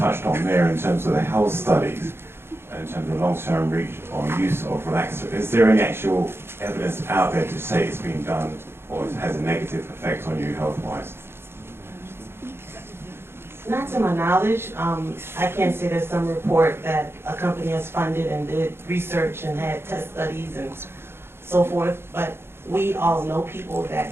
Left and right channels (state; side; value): late; left; 0.11 ms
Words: on there in terms of the health studies, in terms of long-term reach or use of relaxer. Is there any actual evidence out there to say it's been done or it has a negative effect on you health-wise? Not to my knowledge. I can't say there's some report that a company has funded and did research and had test studies and so forth, but we all know people that